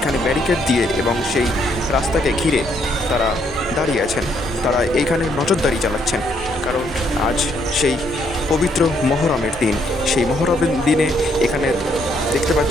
ব্যারিকেড দিয়ে এবং সেই রাস্তাকে ঘিরে তারা দাঁড়িয়ে আছেন। তারা এইখানে নজরদারি চালাচ্ছেন, কারণ আজ সেই পবিত্র মহরমের দিন। সেই মহরমের দিনে এখানে দেখতে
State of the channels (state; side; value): normal; both; correlation 0.71